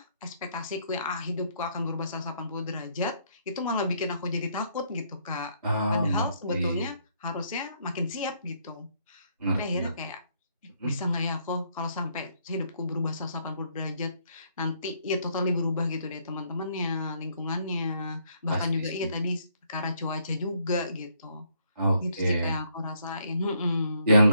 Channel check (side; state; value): both; inverted; correlation -0.70